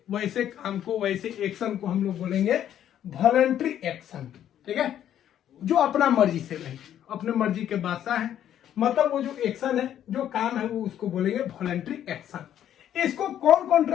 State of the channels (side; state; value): right; quieter; 10.6 dB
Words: वैसे काम को, वैसे एक्शन को हम लोग बोलेंगे वॉलंटरी एक्शन। ठीक है, जो अपना मर्जी से नहीं, अपने मर्जी के बादशाह है, मतलब वो जो एक्शन है, जो काम है, वो उसको बोलेंगे वॉलंटरी एक्शन। इसको कौन